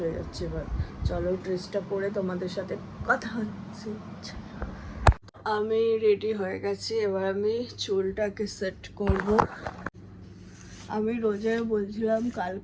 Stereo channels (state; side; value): identical; both; correlation 1.00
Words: যাচ্ছে। এবার চলো ড্রেসটা পরে তোমাদের সাথে কথা হচ্ছে। আমি রেডি হয়ে গেছি, এবার আমি চুলটাকে সেট করব। আমি রোজে বলছিলাম কাল